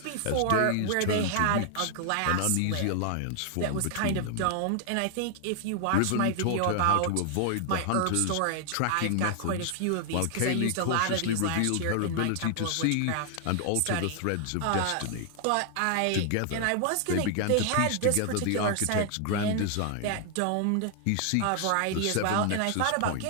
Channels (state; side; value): different; both; correlation 0.00